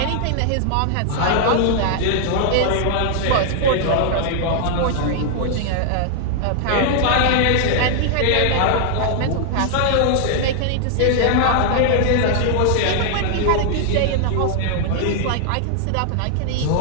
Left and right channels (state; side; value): different; both; correlation 0.00